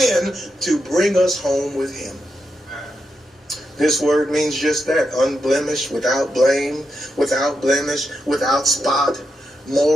to bring us home with Him. This word means just that, unblemished, without blame, without blemish, without spot,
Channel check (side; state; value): both; normal; correlation 0.85